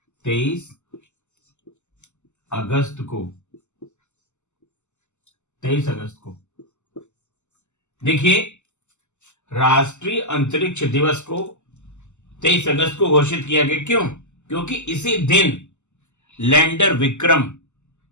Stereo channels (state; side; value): late; right; 0.83 ms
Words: को। देखिए, राष्ट्रीय अंतरिक्ष दिवस को 23 अगस्त को घोषित किया गया। क्यों? क्योंकि इसी दिन लैंडर विक्रम